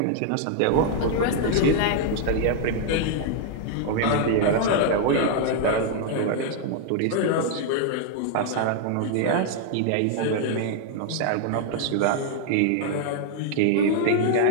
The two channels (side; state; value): both; different; correlation 0.00